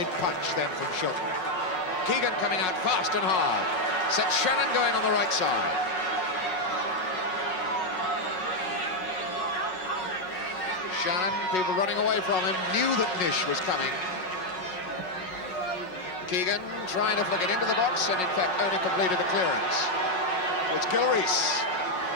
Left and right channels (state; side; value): late; right; 5.5 ms